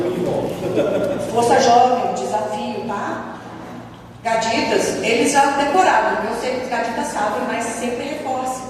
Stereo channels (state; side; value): identical; both; correlation 1.00